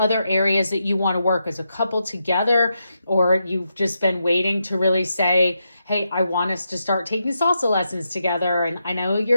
areas that you want to work as a couple together, or you've just been waiting to really say, hey, I want us to start taking salsa lessons together. And I know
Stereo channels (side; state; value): both; inverted; correlation -0.84